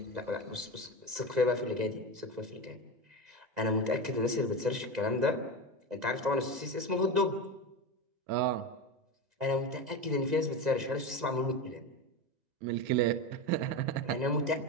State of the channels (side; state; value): left; late; 2.0 ms